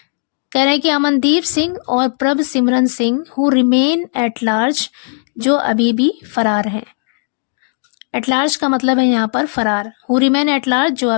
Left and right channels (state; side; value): silent; right; digital silence